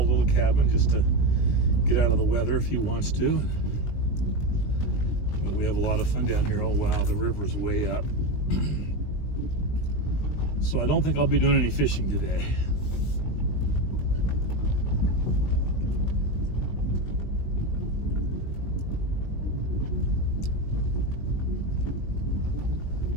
little cabin just to get out of the weather if he wants to. But we have a lot of fun down here. Oh wow, the river's way up. So I don't think I'll be doing any fishing today.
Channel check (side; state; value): right; late; 20 ms